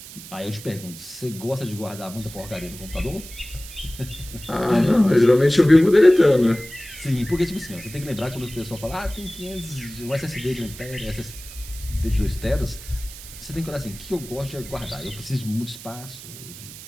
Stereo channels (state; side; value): noise; right; hiss, 15 dB below the sound